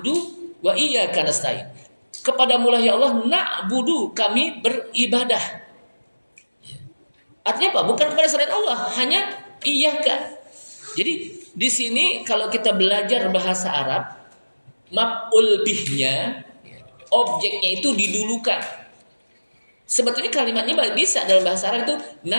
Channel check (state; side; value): inverted; both; correlation -1.00